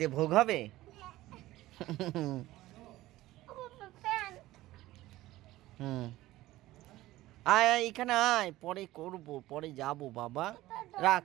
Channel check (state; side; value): quieter; left; 16.7 dB